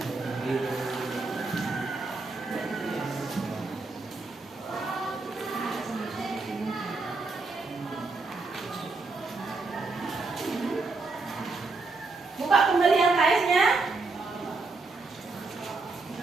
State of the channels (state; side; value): quieter; left; 3.7 dB